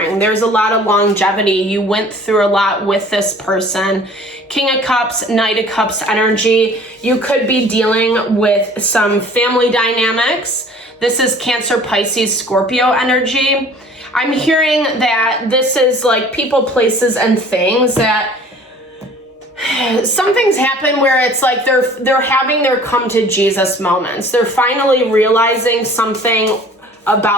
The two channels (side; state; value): both; normal; correlation 0.49